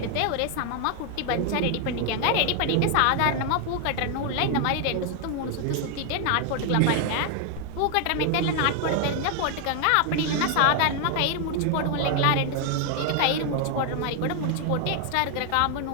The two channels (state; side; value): different; both; correlation 0.00